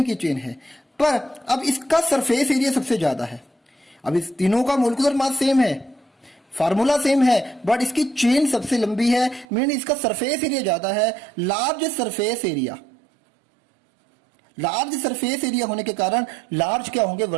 की चेन है। पर अब इसका सरफेस एरिया सबसे ज्यादा है। अब इस तीनों का मोलिकुलर मास सेम है, फार्मूला सेम है, बट इसकी चेन सबसे लंबी है, मीन इसका सरफेस एरिया ज्यादा है। Large surface area, large surface area होने के कारण लार्ज क्या होंगे,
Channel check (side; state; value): left; drops out; at 9.5 s